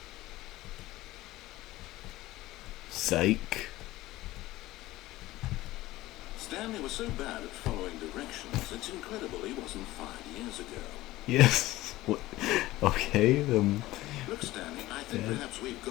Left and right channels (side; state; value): right; quieter; 17.2 dB